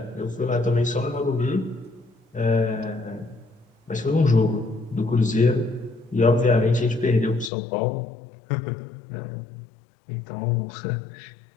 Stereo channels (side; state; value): right; drops out; at 7.5 s